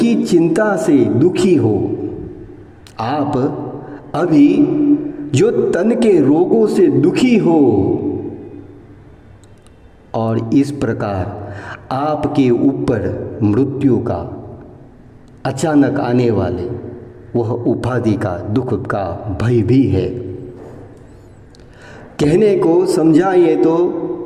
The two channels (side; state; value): both; identical; correlation 1.00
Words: चिंता से दुखी हो, आप अभी जो तन के रोगों से दुखी हो, और इस प्रकार आपके ऊपर मृत्यु का अचानक आने वाले वह उपाधि का दुख का भय भी है। कहने को समझाइए तो